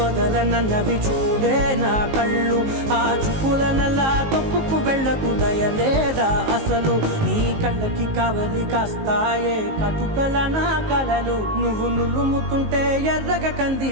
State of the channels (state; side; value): late; left; 19 ms